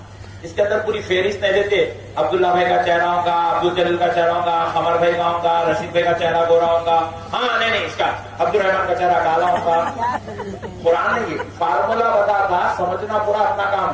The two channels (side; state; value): both; identical; correlation 1.00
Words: اس کے اندر پوری فہرست نہیں دیتے. عبداللہ بھائی کا چہرہ ہوگا, عبد الجلیل کا چہرہ ہوگا, قمر بھائی کا ہوگا, رشید بھائی کا چہرہ گورا ہوگا, ہاں نہیں اس کا عبد الرحمان کا چہرہ کالا ہوگا. قرآن نے یہ فارمولا بتاتا, سمجھنا پورا اپنا کام